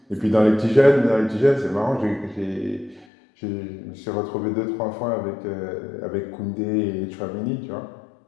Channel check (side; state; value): right; drops out; at 3.1 s